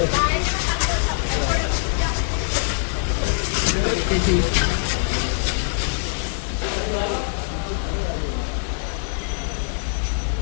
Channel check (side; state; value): right; silent; digital silence